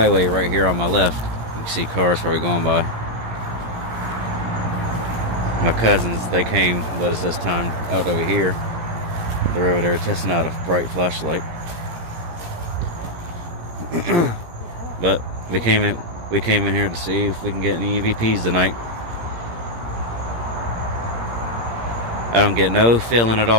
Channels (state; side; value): late; left; 17 ms